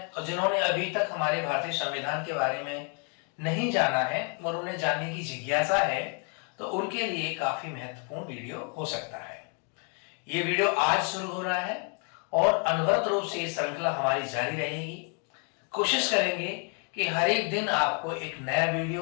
और जिन्होंने अभी तक हमारे भारतीय संविधान के बारे में नहीं जाना है और उन्हें जानने की जिज्ञासा है तो उनके लिए काफी महत्वपूर्ण वीडियो हो सकता है। ये वीडियो आज शुरू हो रहा है और अनवरत रूप से ये श्रृंखला हमारी जारी रहेगी। कोशिश करेंगे कि हर एक दिन आपको एक नया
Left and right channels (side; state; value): right; quieter; 39.8 dB